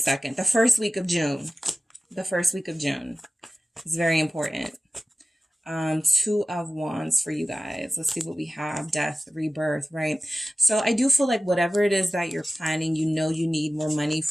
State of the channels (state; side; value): normal; both; correlation 0.96